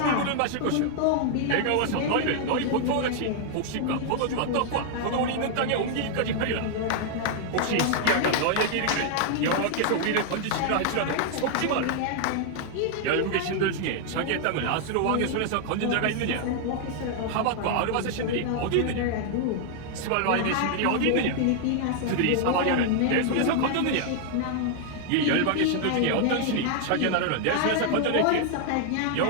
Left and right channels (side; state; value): both; different; correlation 0.00